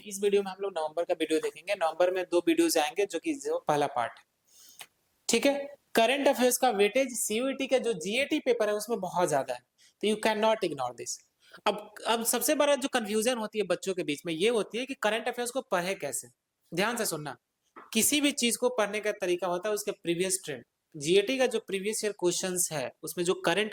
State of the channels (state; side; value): identical; both; correlation 1.00